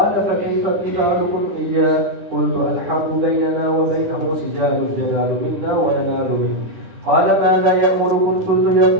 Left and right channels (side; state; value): left; late; 10 ms